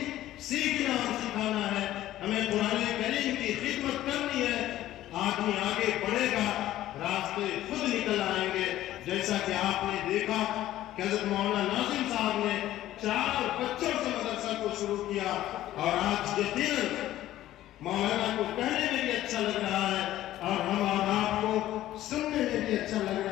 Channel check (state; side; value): quieter; right; 14.0 dB